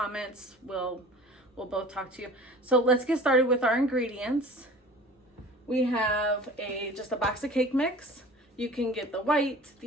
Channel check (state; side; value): normal; both; correlation 0.43